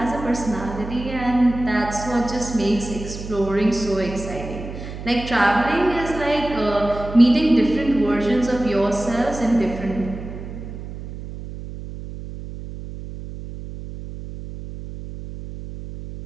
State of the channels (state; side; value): noise; right; hum, 10 dB below the sound